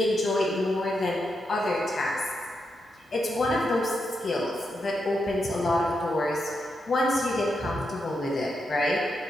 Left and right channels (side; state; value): both; normal; correlation 0.84